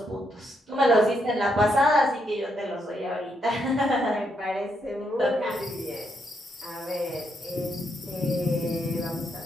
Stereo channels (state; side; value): normal; both; correlation 0.78